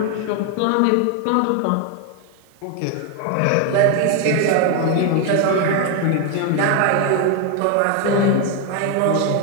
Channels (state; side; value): different; both; correlation 0.01